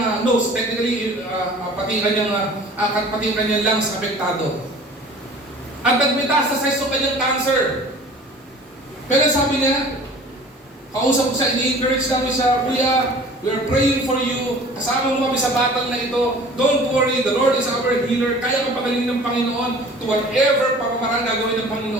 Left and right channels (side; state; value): both; normal; correlation 0.46